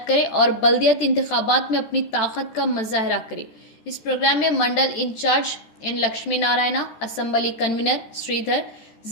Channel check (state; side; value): late; right; 14 ms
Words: करे और बल्दियाती इंतखाबात में अपनी ताकत का मुजाहरा करे। इस प्रोग्राम में mandal in charge N Lakshmi Narayana, assembly convener Sridhar,